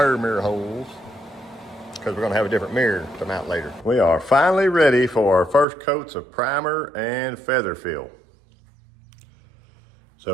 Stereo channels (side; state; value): left; drops out; at 5.7 s